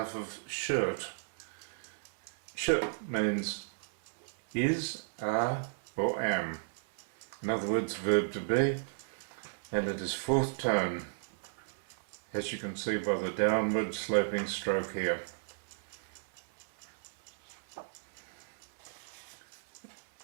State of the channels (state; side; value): silent; left; 55 dB below the other